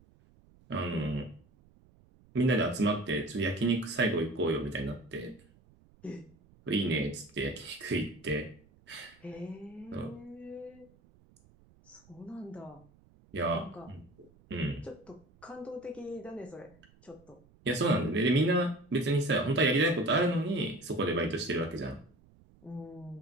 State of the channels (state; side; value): noise; right; rumble, 28 dB below the sound